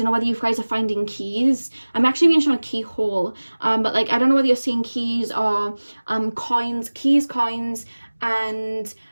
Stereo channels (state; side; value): inverted; both; correlation -1.00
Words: know whether you guys are finding keys. I'm actually being shown a keyhole, but like, I don't know whether you're seeing keys or coins, and